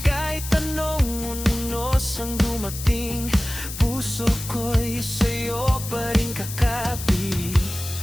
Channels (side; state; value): left; noise; hiss, 9 dB below the sound